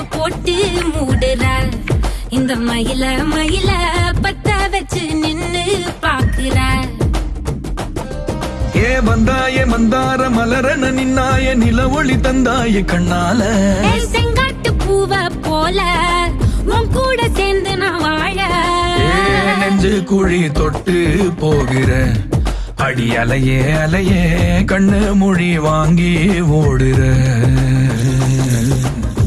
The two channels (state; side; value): identical; both; correlation 1.00